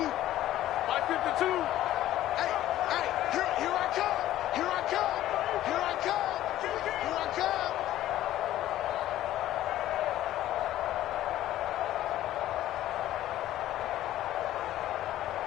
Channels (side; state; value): right; quieter; 13.7 dB